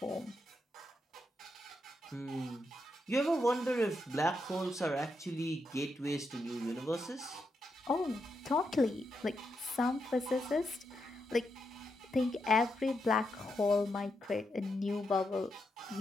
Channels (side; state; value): both; normal; correlation 0.83